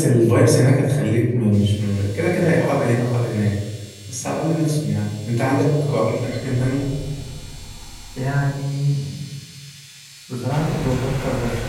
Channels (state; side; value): identical; both; correlation 1.00